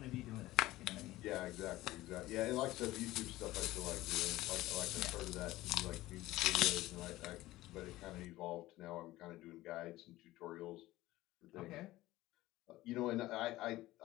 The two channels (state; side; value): quieter; right; 17.1 dB